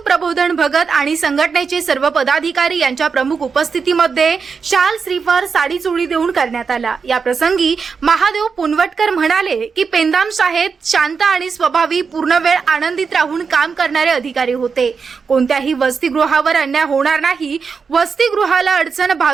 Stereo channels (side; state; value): left; quieter; 5.5 dB